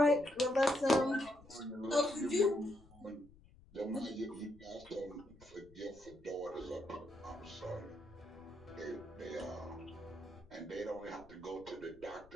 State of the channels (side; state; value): left; noise; rumble, 24 dB below the sound